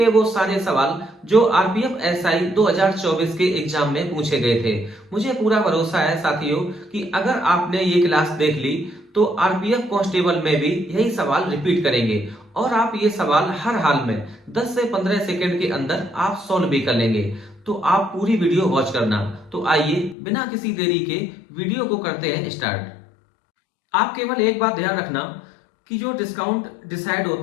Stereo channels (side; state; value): right; drops out; at 20.2 s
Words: वो सारे सवाल जो आरपीएफ एसआई 2024 के एग्जाम में पूछे गए थे। मुझे पूरा भरोसा है साथियों कि अगर आपने ये क्लास देख ली तो आरपीएफ कांस्टेबल में भी यही सवाल रिपीट करेंगे और आप ये सवाल हर हाल में 10 से 15 सेकंड के अंदर आप सॉल्व भी कर लेंगे। तो आप पूरी वीडियो वॉच करना। तो आइए बिना किसी देरी के वीडियो को करते हैं स्टार्ट। आप केवल एक बात ध्यान रखना कि जो डिस्काउंट डिसाइड